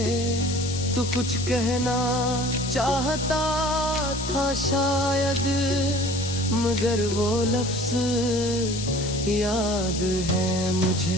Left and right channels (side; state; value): left; noise; hiss, 8 dB below the sound